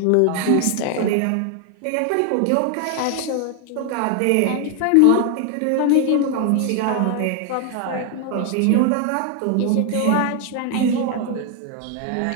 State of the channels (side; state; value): both; different; correlation 0.00